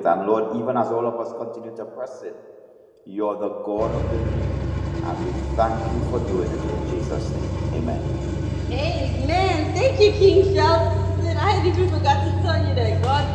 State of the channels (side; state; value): both; identical; correlation 1.00